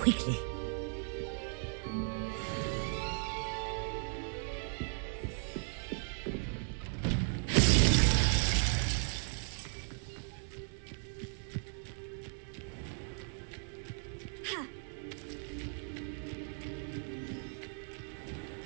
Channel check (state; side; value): silent; left; 53 dB below the other